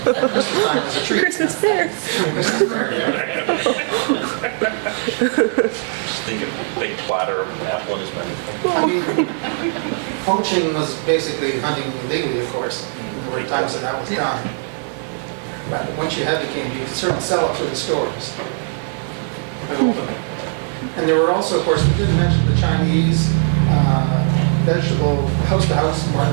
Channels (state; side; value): silent; left; 55 dB below the other